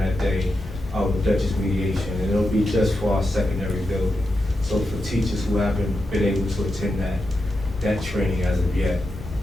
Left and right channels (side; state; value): both; normal; correlation 0.88